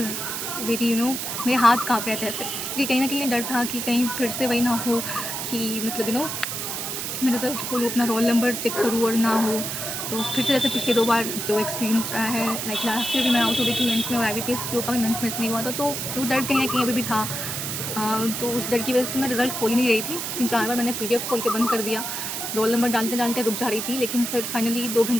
वेरी मेरे हाथ काँप रहे थे ऐसे, क्योंकि कहीं ना कहीं ये डर था कि कहीं फिर से वही ना हो कि मतलब मैं रिज़ल्ट खोलूँ, अपना रोल नंबर चेक करूँ और ना हो। तो फिर से जैसे पिछले 2 बार जो एक्सपीरियंस रहा है, लाइक लास्ट ईयर भी मैं आउट हो गई थी मेंस में और IBPS PO का भी मेंस मिस नहीं हुआ था, तो वो डर कहीं ना कहीं अभी भी था। तो उस डर की वजह से मैं रिज़ल्ट खोल ही नहीं रही थी। 3-4 बार मैंने PDF खोल के बंद कर दिया, रोल नंबर डालते डालते रुक जा रही थी, लेकिन फिर फाइनली 2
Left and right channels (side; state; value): right; noise; hiss, 4 dB below the sound